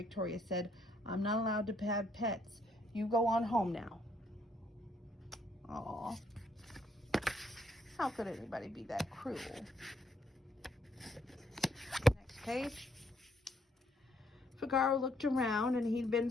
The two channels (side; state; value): both; normal; correlation 0.71